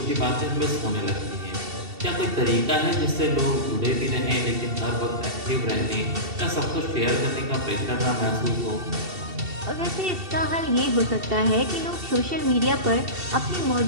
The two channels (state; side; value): late; left; 2.7 ms